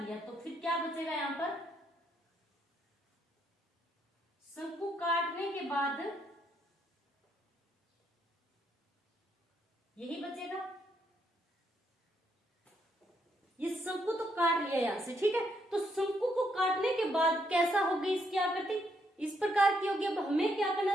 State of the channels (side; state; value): both; normal; correlation 0.75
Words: तो फिर क्या बचेगा यहां पर, शंकु काटने के बाद यही बचेगा। ये शंकु तो काट लिया यहाँ से, ठीक है। तो शंकु को काटने के बाद कैसा होगी इसकी आकृति, इस प्रकार की होगी। अब हमें क्या करना